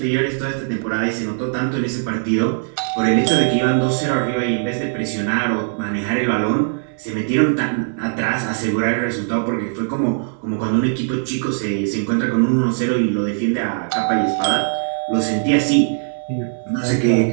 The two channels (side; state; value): left; silent; digital silence